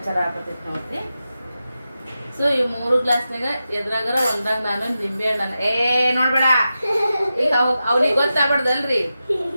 ಆಗತೈತಿ ನೋಡ್ರಿ. ಸೊ ಈ 3 ಗ್ಲಾಸ್ನಾಗ ಎದ್ರಾಗರ ಒಂದಾಗ ನಾನು ನಿಂಬೆ ಹಣ್ಣು ನೋಡ್ಬೇಡ. ಈಗ ಅವ್ನಿಗೆ ಗೊತ್ತಾಗ್ಬಾರ್ದಲ್ರಿ,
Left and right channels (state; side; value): inverted; both; correlation -0.91